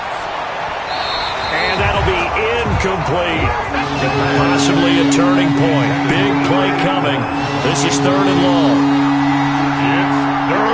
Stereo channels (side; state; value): both; identical; correlation 1.00